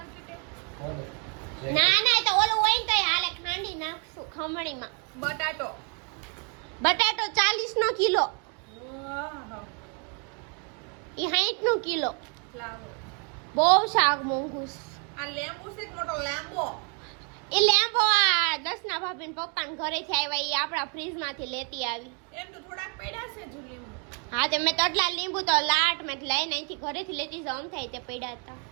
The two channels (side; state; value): left; quieter; 37.8 dB